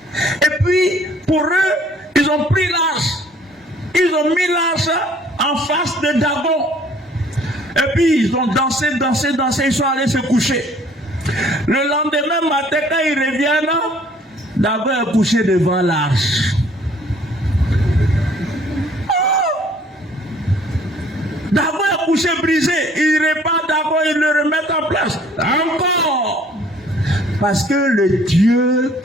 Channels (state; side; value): normal; both; correlation 0.57